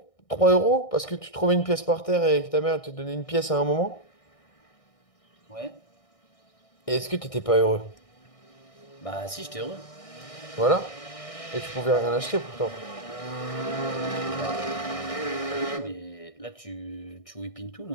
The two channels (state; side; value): late; right; 1.6 ms